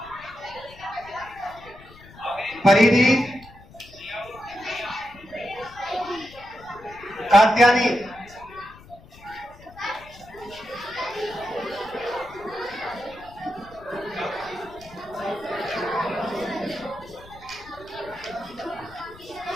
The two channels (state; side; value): noise; left; rumble, 21 dB below the sound